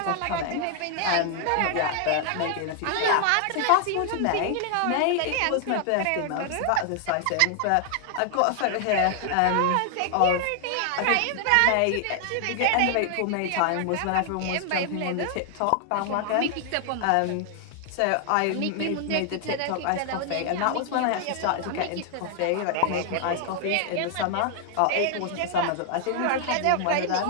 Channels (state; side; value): different; both; correlation 0.00